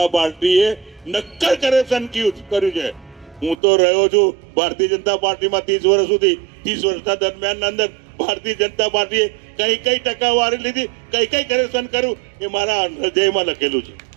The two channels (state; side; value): drops out; left; at 3.6 s